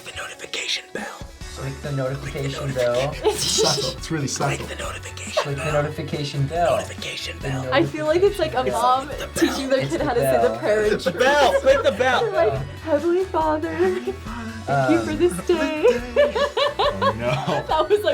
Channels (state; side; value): identical; both; correlation 1.00